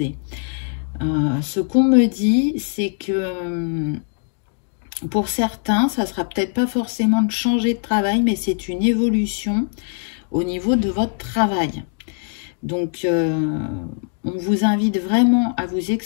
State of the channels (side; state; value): right; silent; 62 dB below the other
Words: Ce qu'on me dit, c'est que pour certains, ça sera peut-être pas forcément de changer de travail, mais c'est une évolution au niveau de votre travail. Donc, on vous invite vraiment à vous